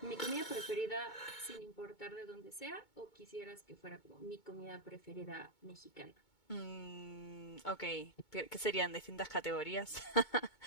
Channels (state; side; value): late; right; 2.2 ms